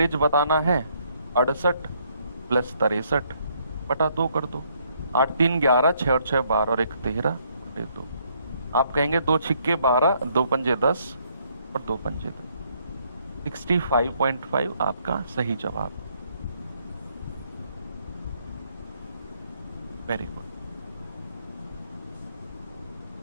बताना है। 68 + 63/2 कर दो। 8 3 11, 6 और 6 12 और 1 13 और 2। आप कहेंगे 2 छिक्के 12, 2 पंजे 10 और 2 पंजे 2। 65.5 आपका सही जवाब। Very good.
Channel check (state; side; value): inverted; both; correlation -0.70